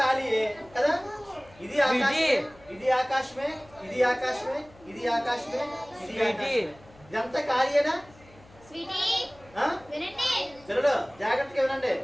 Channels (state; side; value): noise; left; hum, 25 dB below the sound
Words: ఖాళీయే కదా. ఇది ఆకాశమే, ఇది ఆకాశమే, ఇది ఆకాశమే, ఇది ఆకాశమే, ఇది ఆకాశమే. ఇదంతా ఖాళీయేనా? పిల్లలు జాగ్రత్తగా వినండి.